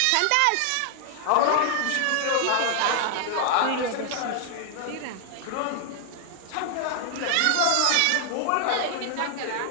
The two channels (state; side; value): different; both; correlation 0.00